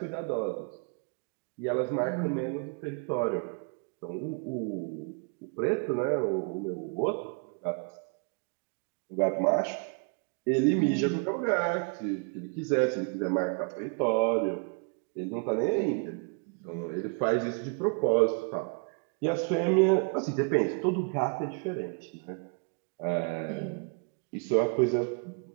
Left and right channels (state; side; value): quieter; left; 38.5 dB